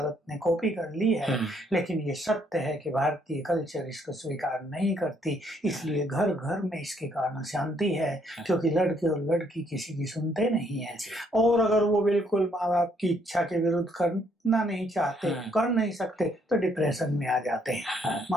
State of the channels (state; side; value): normal; both; correlation 0.69